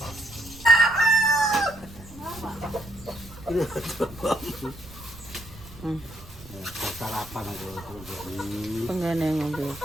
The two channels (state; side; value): noise; right; rumble, 18 dB below the sound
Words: sarapan aku jadi. Penggane ngombe